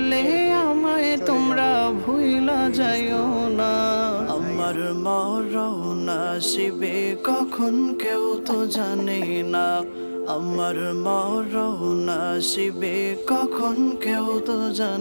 আমায় তোমরা ভুইলা যাইও না। আমার মরণ আসিবে কখন কেউ তো জানে না। আমার মরণ আসিবে কখন কেউ তো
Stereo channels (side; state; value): both; inverted; correlation -1.00